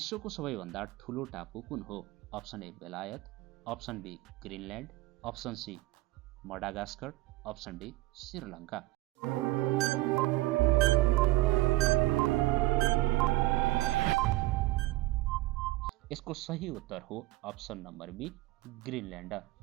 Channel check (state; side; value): quieter; left; 18.8 dB